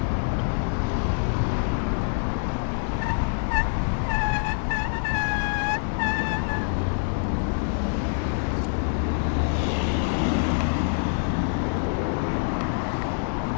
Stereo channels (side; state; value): right; silent; digital silence